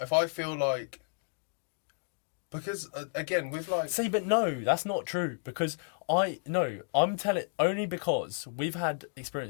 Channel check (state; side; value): silent; right; digital silence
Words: I feel like, because again with like, see, but no, that's not true, because I'm telling only because we've had